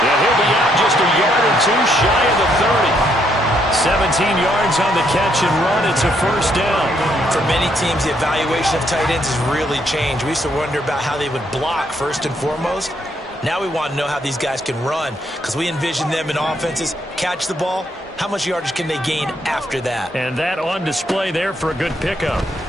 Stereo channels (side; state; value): both; normal; correlation 0.73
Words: Yeah, he'll be out just a yard or two shy of the 30. 17 yards on the catch and run. It's a first down. For many teams, the evaluation of tight ends has really changed. We used to wonder about how they would block first and foremost. Now we want to know how these guys can run because we envision them in offenses. Catch the ball. How much yardage can they gain after that? And that on display there for a good pickup.